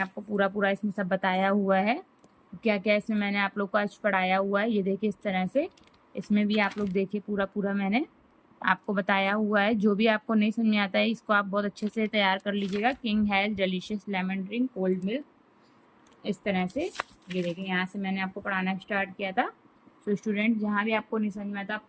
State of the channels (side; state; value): both; identical; correlation 1.00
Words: आपको पूरा इसमें सब बताया हुआ है, क्या क्या इसमें मैंने आप लोग को आज पढ़ाया हुआ है। ये देखिए इस तरह से इसमें भी आप लोग देखिए पूरा मैंने आपको बताया हुआ है। जो भी आपको नहीं समझ में आता है इसको आप बहुत अच्छे से तैयार कर लीजिएगा। King has delicious lemon drink cold milk, इस तरह से। ये देखिए यहाँ से मैंने आपको पढ़ाना स्टार्ट किया था। सो स्टूडेंट, जहाँ भी आपको नहीं समझ में आता आप